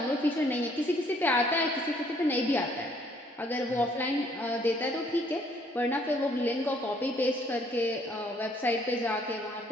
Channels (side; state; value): both; normal; correlation 0.64